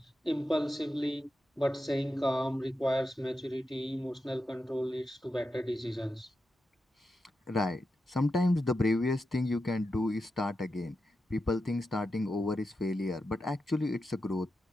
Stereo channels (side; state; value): both; normal; correlation 0.89